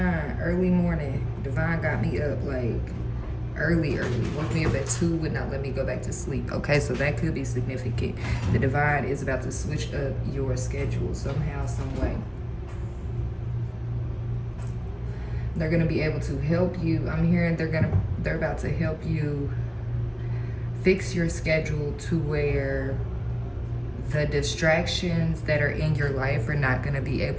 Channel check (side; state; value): both; identical; correlation 1.00